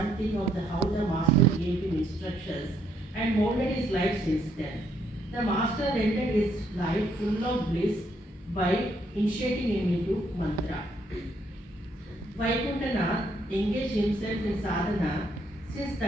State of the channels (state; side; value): normal; both; correlation 0.71